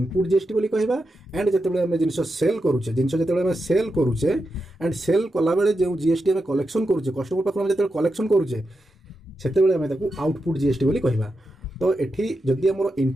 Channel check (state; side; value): normal; both; correlation 0.87